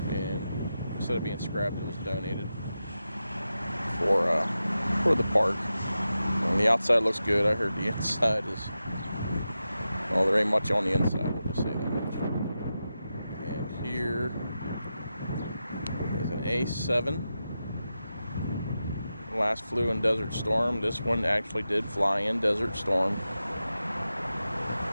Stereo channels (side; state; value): both; inverted; correlation -0.91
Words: and instead of being scrapped, it was donated for the park. And the outside looks good. I heard the inside is, well, there ain't much on the inside, we'll just say that much. And here is an A7. Last flew in Desert Storm. This one actually did fly in Desert Storm